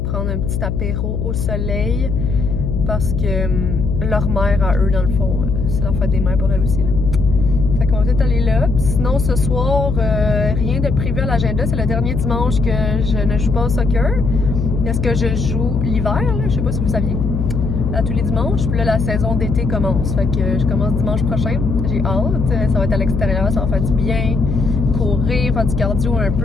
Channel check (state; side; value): noise; left; hum, 2 dB below the sound